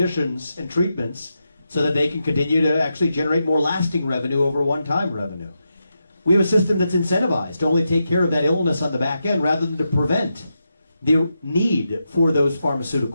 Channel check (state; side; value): inverted; both; correlation -0.87